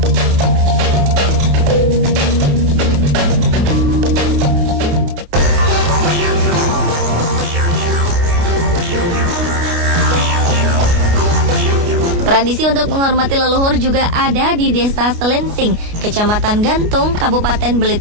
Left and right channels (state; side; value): late; left; 29 ms